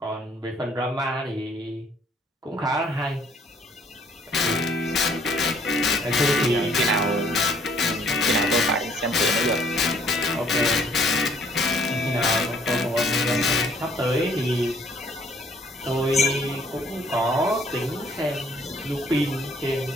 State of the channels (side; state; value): both; normal; correlation 0.61